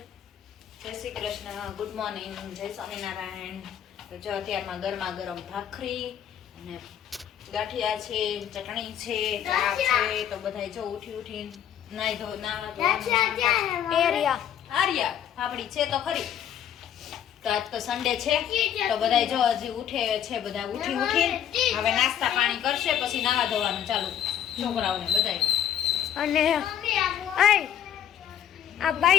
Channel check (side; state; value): right; quieter; 9.9 dB